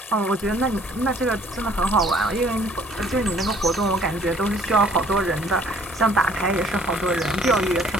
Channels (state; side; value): normal; both; correlation 0.58